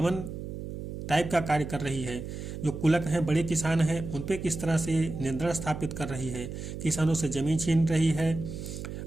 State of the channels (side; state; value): right; noise; hum, 8 dB below the sound